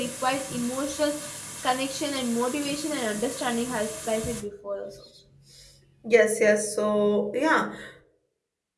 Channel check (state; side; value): identical; both; correlation 1.00